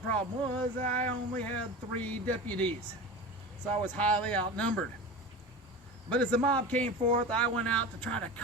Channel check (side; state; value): both; normal; correlation 0.30